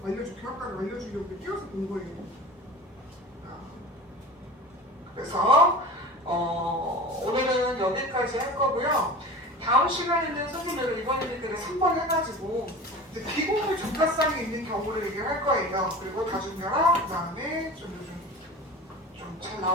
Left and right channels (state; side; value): normal; both; correlation 0.35